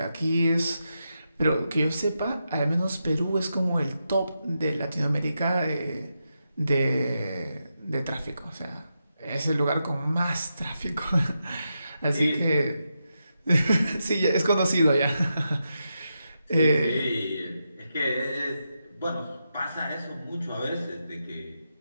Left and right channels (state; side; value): inverted; both; correlation -0.86